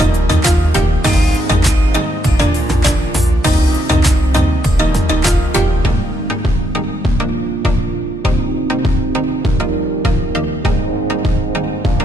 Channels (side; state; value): both; normal; correlation 0.76